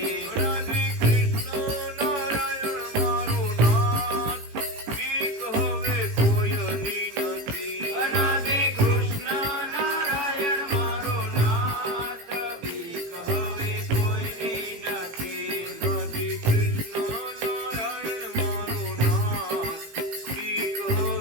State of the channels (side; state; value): left; late; 18 ms